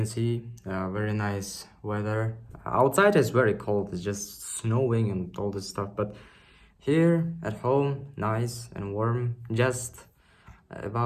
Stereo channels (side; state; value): both; identical; correlation 1.00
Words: see, very nice weather. Outside is very cold, it's just snowing and all this stuff, but here at home, nice and warm. Just